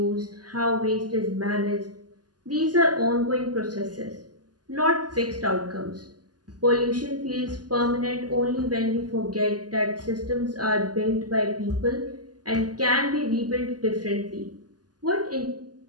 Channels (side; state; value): left; late; 0.69 ms